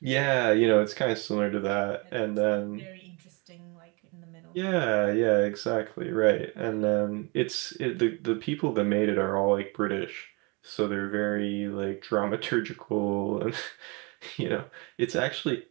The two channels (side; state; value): left; quieter; 29.8 dB